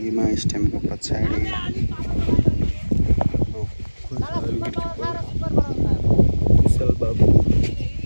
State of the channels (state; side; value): inverted; both; correlation -1.00